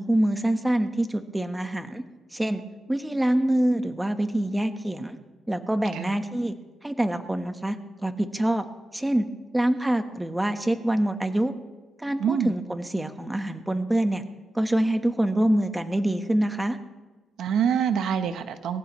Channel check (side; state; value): both; normal; correlation 0.94